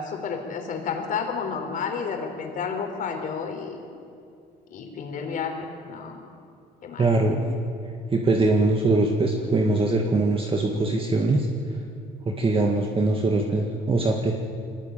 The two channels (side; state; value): both; normal; correlation 0.61